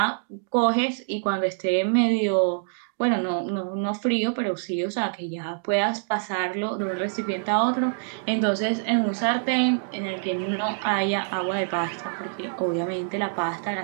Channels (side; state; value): left; silent; digital silence